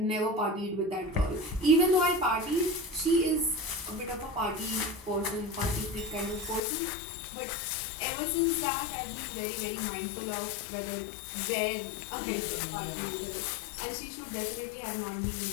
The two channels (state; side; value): drops out; right; at 6.6 s